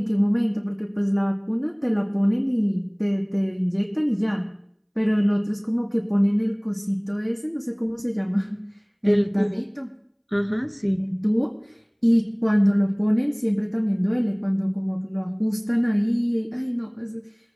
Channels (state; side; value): identical; both; correlation 1.00